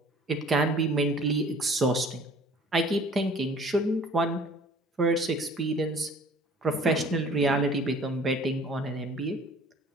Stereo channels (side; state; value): both; normal; correlation 0.50